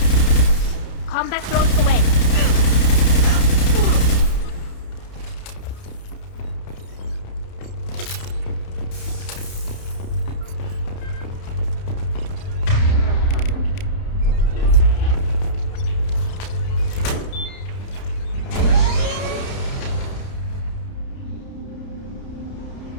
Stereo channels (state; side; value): late; right; 31 ms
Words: Combat throws away.